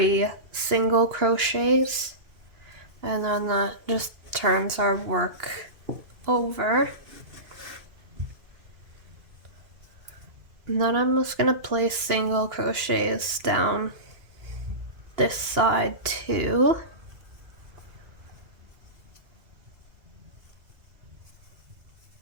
single crochets, and then that just turns our work over. And then I'm just going to place single crochets down this side too.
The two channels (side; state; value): left; late; 2.9 ms